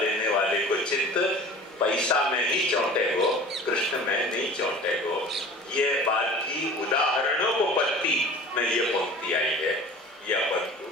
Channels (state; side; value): normal; both; correlation 0.42